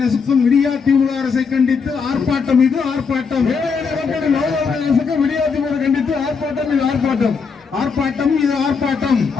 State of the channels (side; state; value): right; quieter; 5.4 dB